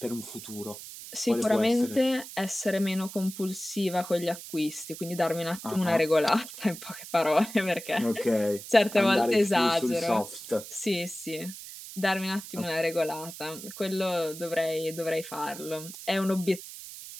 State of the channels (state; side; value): noise; right; hiss, 13 dB below the sound